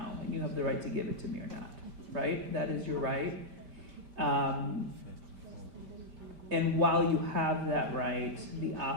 and you have the right to give it to me or not, right? That is your right. And while you have that right, the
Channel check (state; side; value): late; left; 5.1 ms